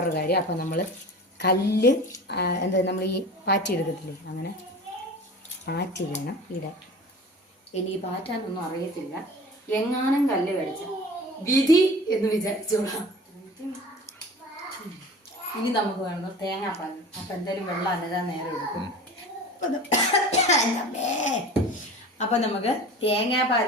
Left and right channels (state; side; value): normal; both; correlation 0.38